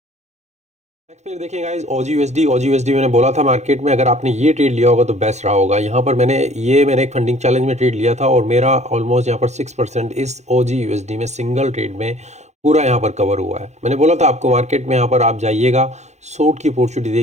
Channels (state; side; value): late; left; 0.33 ms